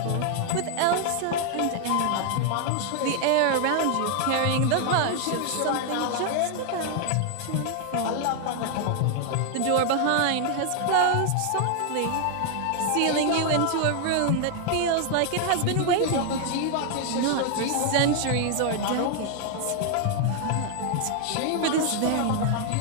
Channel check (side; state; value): both; different; correlation 0.00